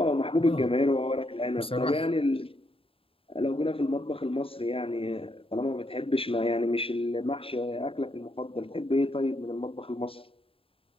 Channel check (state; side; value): late; right; 0.27 ms